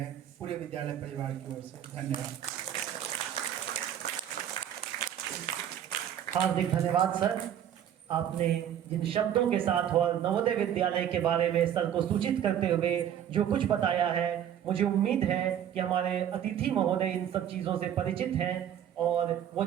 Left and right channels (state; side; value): quieter; left; 10.1 dB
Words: पूरे विद्यालय परिवार की ओर से। धन्यवाद। हार्दिक धन्यवाद सर, आपने जिन शब्दों के साथ और नवोदय विद्यालय के बारे में सर को सूचित करते हुए जो कुछ बताया है, मुझे उम्मीद है कि हमारे अतिथि महोदय इन सब चीज़ों से परिचित हैं और वो